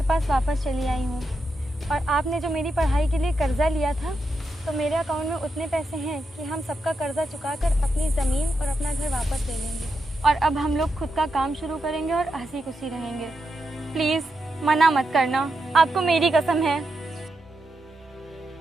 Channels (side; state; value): both; normal; correlation 0.86